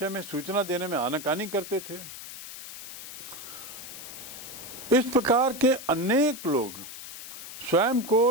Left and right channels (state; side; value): noise; left; hiss, 12 dB below the sound